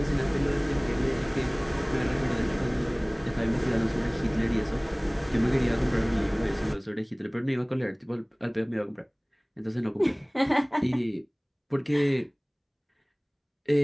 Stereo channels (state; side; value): identical; both; correlation 1.00